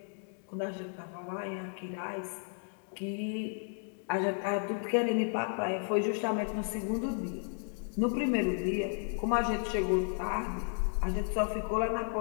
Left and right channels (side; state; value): right; silent; 55 dB below the other